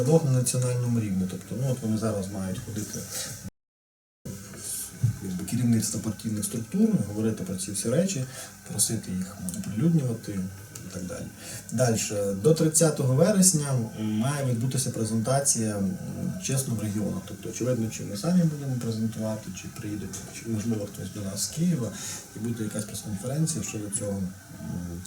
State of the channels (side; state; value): both; identical; correlation 1.00